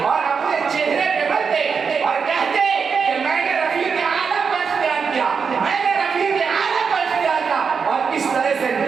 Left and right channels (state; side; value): quieter; left; 5.8 dB